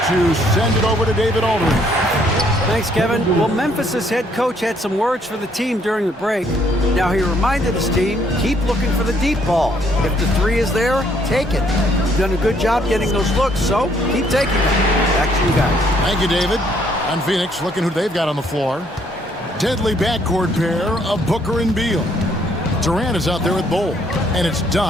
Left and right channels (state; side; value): normal; both; correlation 0.67